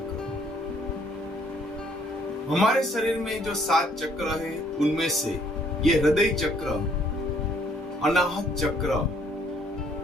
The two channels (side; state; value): both; normal; correlation 0.64